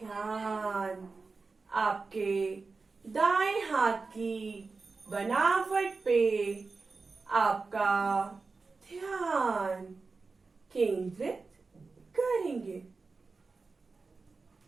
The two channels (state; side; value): quieter; left; 4.2 dB